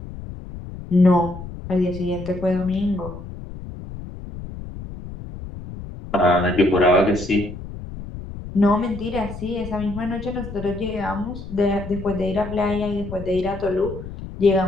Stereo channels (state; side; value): noise; left; rumble, 11 dB below the sound